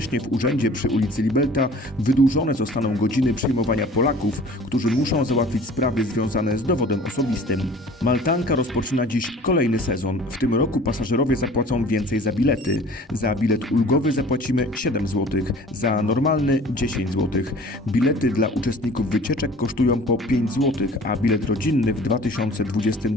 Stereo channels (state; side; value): normal; both; correlation 0.47